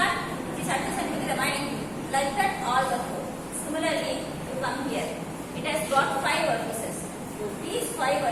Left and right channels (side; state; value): both; identical; correlation 1.00